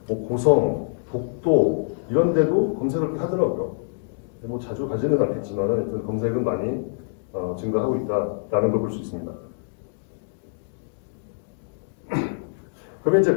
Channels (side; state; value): right; silent; digital silence